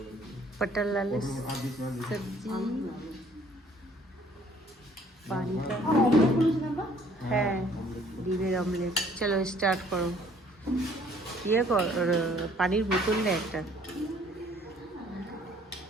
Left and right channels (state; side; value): normal; both; correlation 0.58